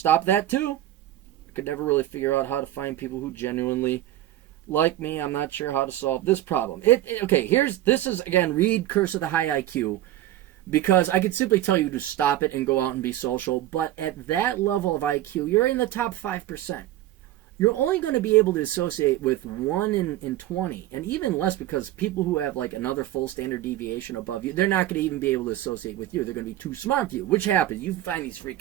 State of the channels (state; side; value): quieter; left; 13.9 dB